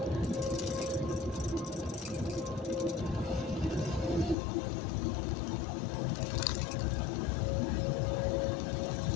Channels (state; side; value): drops out; right; at 4.4 s